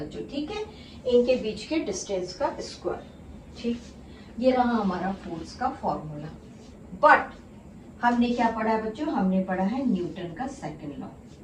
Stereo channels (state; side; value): identical; both; correlation 1.00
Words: ठीक है, इनके बीच के डिस्टेंस का स्क्वायर। ठीक, ये रहा हमारा फोर्स का फॉर्मूला। बट हमने क्या पढ़ा है बच्चों, हमने पढ़ा है न्यूटन का सेकंड लॉ।